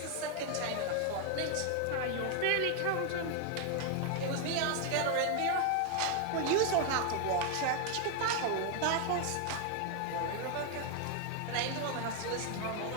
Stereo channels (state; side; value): different; both; correlation 0.01